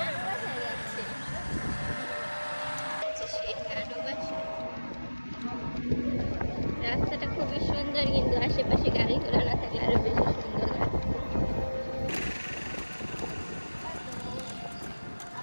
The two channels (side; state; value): both; inverted; correlation -1.00